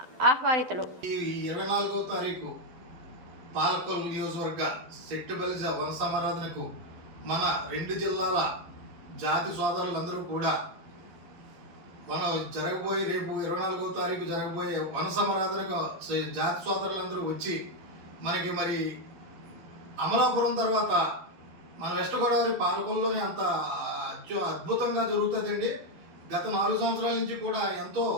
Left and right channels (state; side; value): late; left; 12 ms